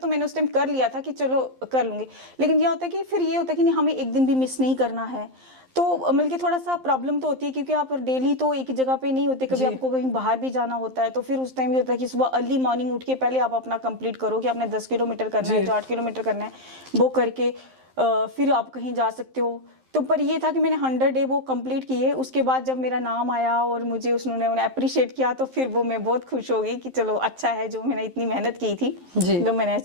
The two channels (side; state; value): left; late; 11 ms